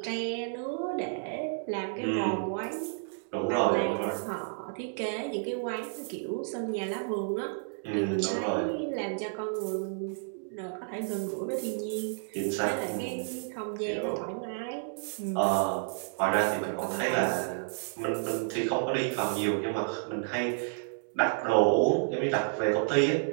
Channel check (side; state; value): left; silent; digital silence